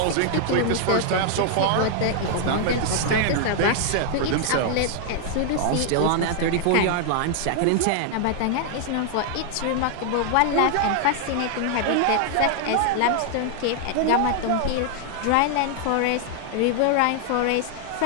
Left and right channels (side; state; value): both; different; correlation 0.00